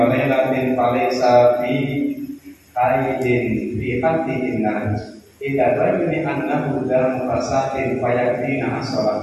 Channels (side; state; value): both; identical; correlation 1.00